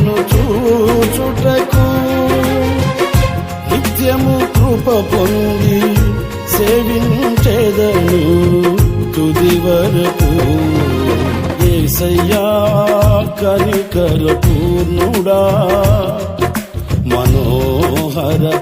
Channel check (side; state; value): both; identical; correlation 1.00